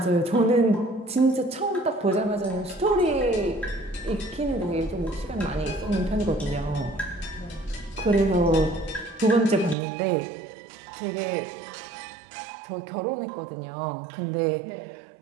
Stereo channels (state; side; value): drops out; left; at 9.8 s